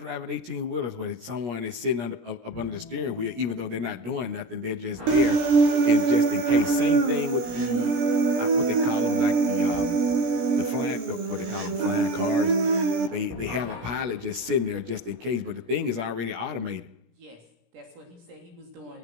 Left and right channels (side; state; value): left; late; 17 ms